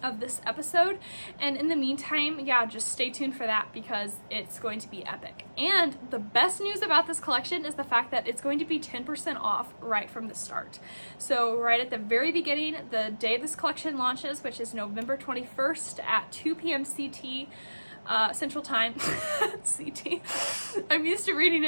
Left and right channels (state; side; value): inverted; both; correlation -1.00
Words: of this episode. And in the meantime, yeah, just stay tuned for that because it's going to be epic. And the best news about this collection is the fact that it's going to be 10% off right from the start. So right at the very beginning, the day this collection launches, which is November 21st at 2 p.m. CT, Central Time. CT. I'm used to reading